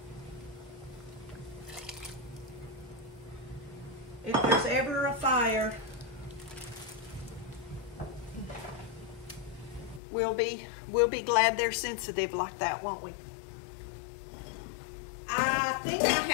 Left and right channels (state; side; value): drops out; right; at 10.0 s